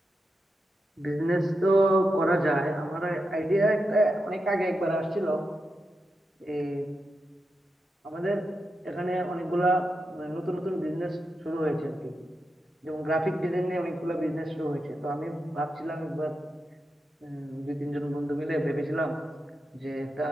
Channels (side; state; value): both; normal; correlation 0.88